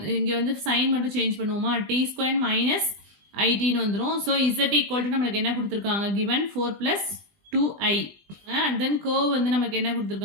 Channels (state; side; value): late; left; 20 ms